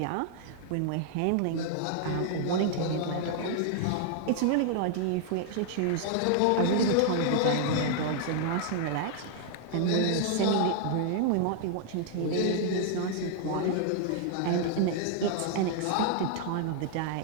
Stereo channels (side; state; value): both; different; correlation 0.00